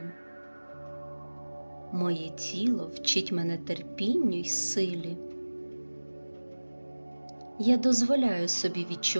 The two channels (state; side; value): inverted; both; correlation -1.00